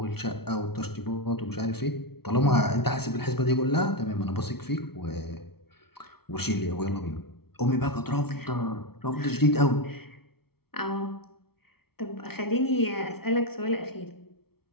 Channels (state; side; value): late; right; 0.95 ms